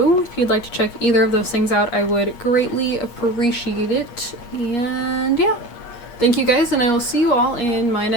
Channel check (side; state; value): right; late; 8.5 ms